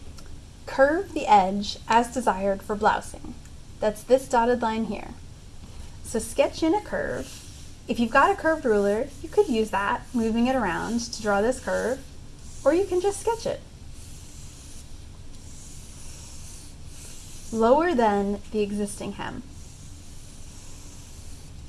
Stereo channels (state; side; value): identical; both; correlation 1.00